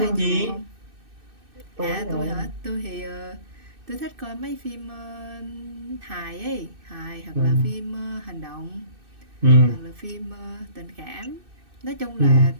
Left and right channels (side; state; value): left; late; 2.6 ms